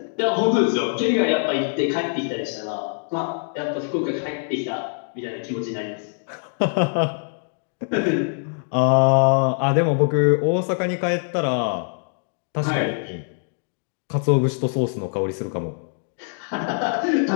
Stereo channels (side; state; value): right; silent; digital silence